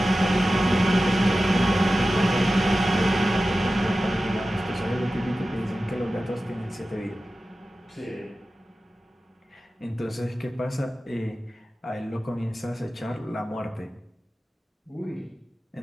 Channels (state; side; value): normal; both; correlation 0.94